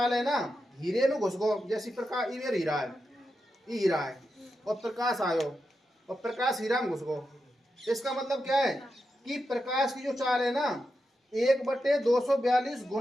है ना, हीरे में घुस गो, जैसे प्रकाश इधर हीरा है, ये हीरा है, और प्रकाश आयो, और प्रकाश हीरा में घुस गो। इसका मतलब क्या है कि प्रकाश की जो चाल है ना, 1/242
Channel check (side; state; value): both; normal; correlation 0.88